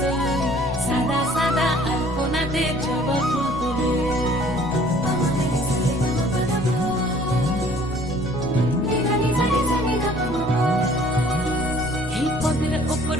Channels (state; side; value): normal; both; correlation 0.55